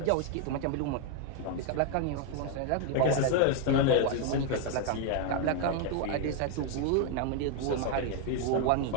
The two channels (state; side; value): different; both; correlation 0.01